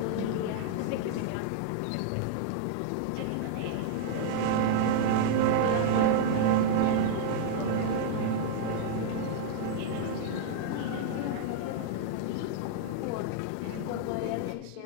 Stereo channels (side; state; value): both; different; correlation -0.01